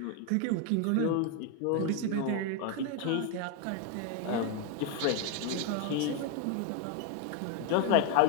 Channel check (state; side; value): different; both; correlation 0.01